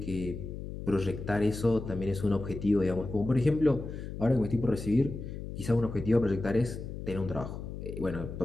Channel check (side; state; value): left; noise; hum, 8 dB below the sound